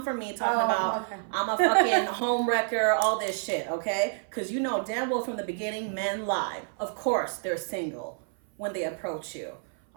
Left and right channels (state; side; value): silent; left; 56 dB below the other